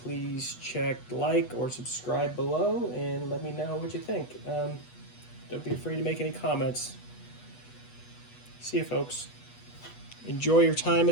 please check like or subscribe below and let me know what you think. Don't be afraid to make any comments. See you, folks. Enjoy your time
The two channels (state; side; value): late; right; 8.2 ms